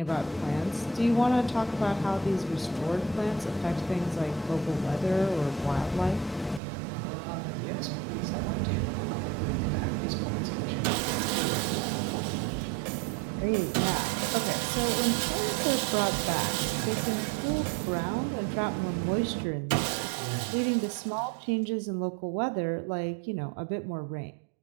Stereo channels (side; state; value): left; drops out; at 6.6 s